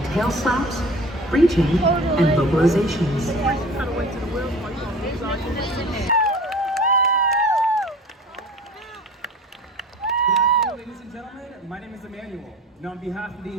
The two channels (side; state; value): both; normal; correlation 0.42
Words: tail slaps, breaching, and vocalizations. Ladies and gentlemen, my name is Emmanuel, and on behalf of the